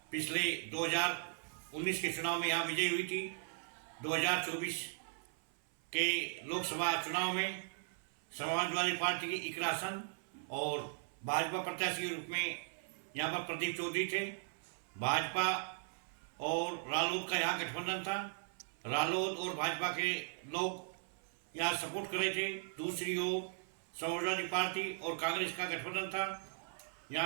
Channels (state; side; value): silent; left; 52 dB below the other